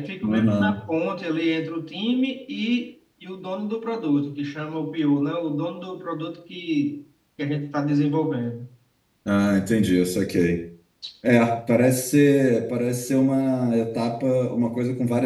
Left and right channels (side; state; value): both; identical; correlation 1.00